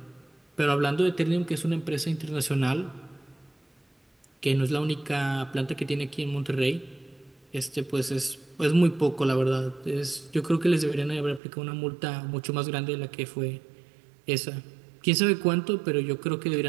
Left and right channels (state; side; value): drops out; left; at 11.4 s